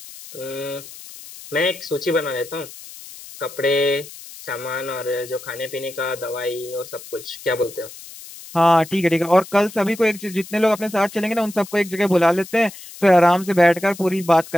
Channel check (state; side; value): noise; left; hiss, 16 dB below the sound